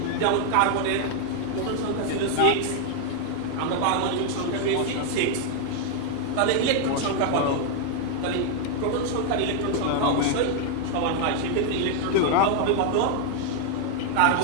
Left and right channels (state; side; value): different; both; correlation 0.00